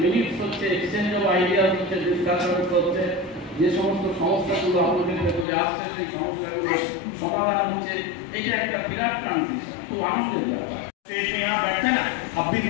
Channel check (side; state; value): right; drops out; at 5.5 s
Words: মিনিটস হচ্ছে, এক্সচেঞ্জ অফ আইডিয়াস হচ্ছে, ডিসকাশনস হচ্ছে, যে সমস্ত সমস্যাগুলো আপনাদের ভেতরে আসছে সেই সমস্যাগুলো সমাধান হচ্ছে। এটা একটা বিরাট ট্রানজিশন, খুব আনন্দের ব্যাপার। स्टेज में यहाँ बैठते हैं ना, अब भी